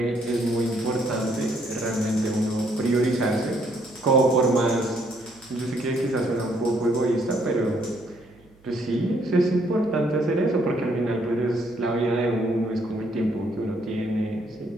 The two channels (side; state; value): right; noise; hum, 29 dB below the sound